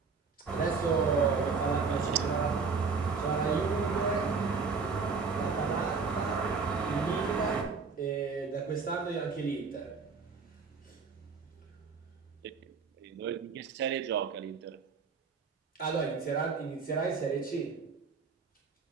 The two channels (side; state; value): left; quieter; 5.0 dB